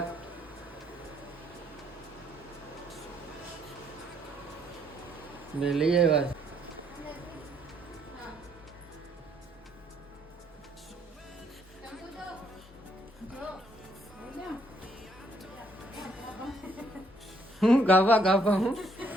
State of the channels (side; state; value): both; normal; correlation 0.69